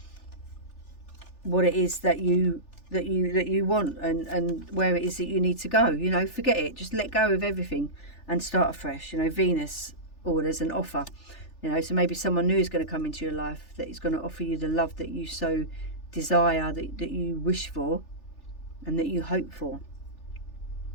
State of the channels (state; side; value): late; right; 3.4 ms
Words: what it is that you want and where it is that you need to go. You know, forget it, just let go of everything and start afresh. You know, Venus orders an offer. You know, so maybe someone new is going to come into your life that is going to offer you the love that you so desire, that you wish for and that you hope for.